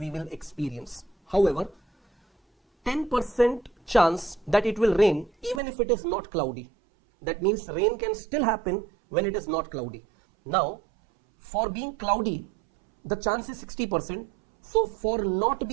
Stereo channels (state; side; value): drops out; left; at 5.6 s